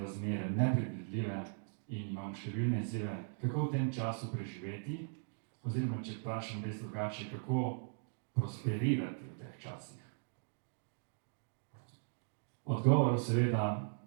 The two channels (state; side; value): silent; left; digital silence